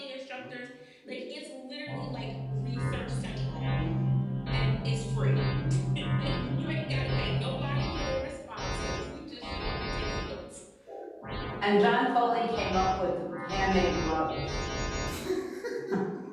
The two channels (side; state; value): both; identical; correlation 1.00